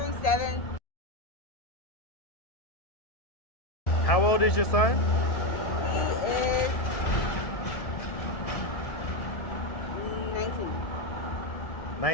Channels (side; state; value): right; late; 1.7 ms